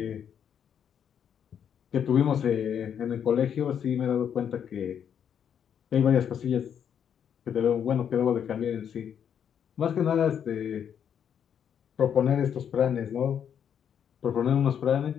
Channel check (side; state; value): right; quieter; 8.4 dB